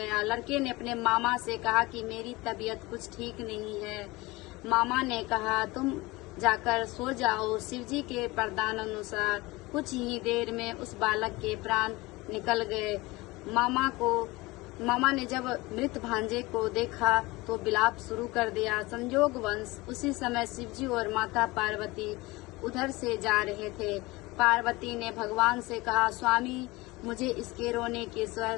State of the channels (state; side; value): quieter; right; 21.9 dB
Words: लड़के ने अपने मामा से कहा कि मेरी तबीयत कुछ ठीक नहीं है। मामा ने कहा, तुम जाकर सो जाओ। शिवजी के वरदान अनुसार कुछ ही देर में उस बालक के प्राण निकल गए। मामा ने जब मृत भांजे को देखा तो विलाप शुरू कर दिया। संयोगवश उसी समय शिवजी और माता पार्वती उधर से जा रहे थे। पार्वती ने भगवान से कहा, स्वामी, मुझे इसके रोने के स्वर